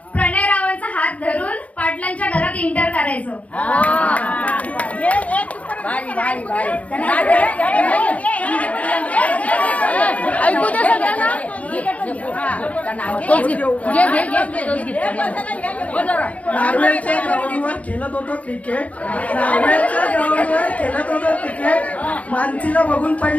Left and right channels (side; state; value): right; late; 0.067 ms